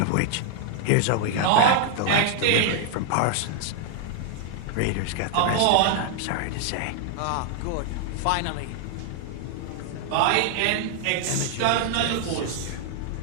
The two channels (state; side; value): different; both; correlation -0.01